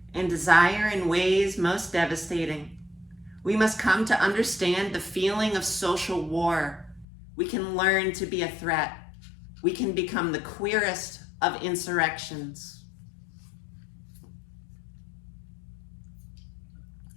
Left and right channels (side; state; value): right; drops out; at 7.1 s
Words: and desire in ways most devastating. We must come to understand the feeling of social war. We can learn to be a threat. We can become the queerest of insurrections.